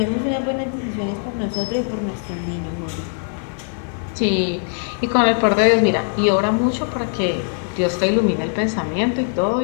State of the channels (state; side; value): silent; right; 65 dB below the other